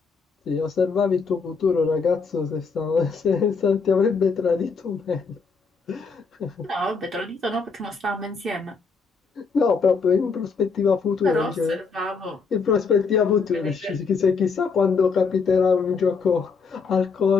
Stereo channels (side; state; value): right; quieter; 5.0 dB